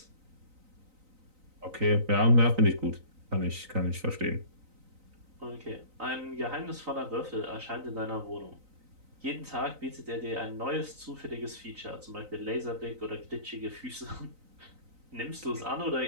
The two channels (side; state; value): left; late; 3.9 ms